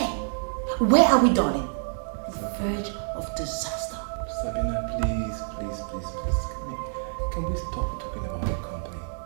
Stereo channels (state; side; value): silent; left; digital silence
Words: Where are we, darling? The verge of disaster. Sabina, please. Can we stop talking about the company